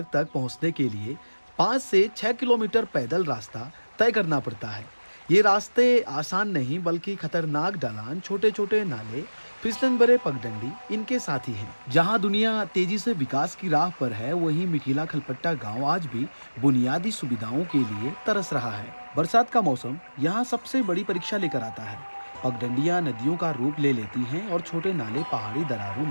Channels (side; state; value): both; inverted; correlation -1.00